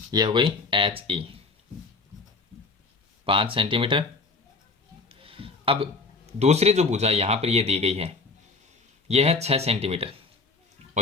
ये हो गई HE 5 सेंटीमीटर। अब दूसरी जो भुजा यहाँ पर ये दी गई है ये है 6 सेंटीमीटर,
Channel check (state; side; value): quieter; right; 4.0 dB